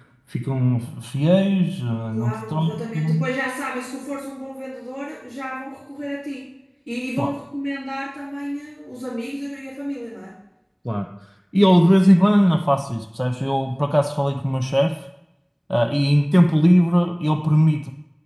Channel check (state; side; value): identical; both; correlation 1.00